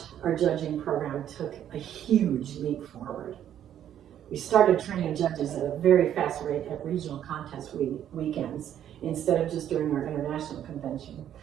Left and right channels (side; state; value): left; quieter; 10.5 dB